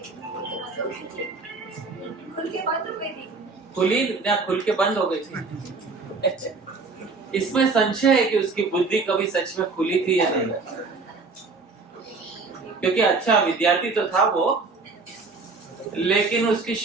खुल के बाद तो गई थी। खुली या खुल के बंद हो गई थी? इसमें संशय है कि उसकी बुद्धि कभी सच में खुली थी या नहीं, क्योंकि अच्छा विद्यार्थी तो था वो, लेकिन उसकी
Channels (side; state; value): left; quieter; 4.1 dB